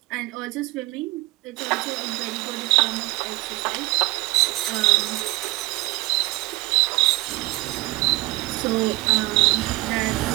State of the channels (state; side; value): quieter; left; 21.1 dB